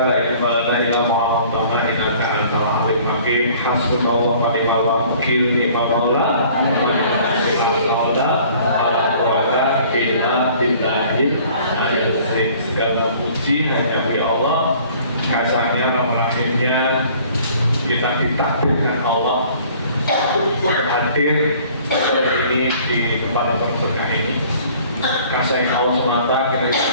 la ilaha illallah innaka antal alim hakim. Hasbunallahu wa ni'mal wakil. Ni'mallah. Segala puji hanya bagi Allah. Kasarnya rahimnya kita ditakdirkan Allah hadir ini di tempat yang berkah ini. Kasih Allah semata kita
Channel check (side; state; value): both; inverted; correlation -0.53